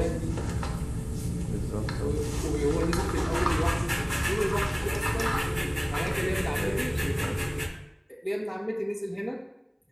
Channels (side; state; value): both; identical; correlation 1.00